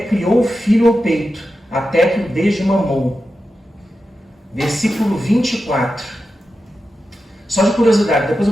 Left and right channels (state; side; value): normal; both; correlation 0.91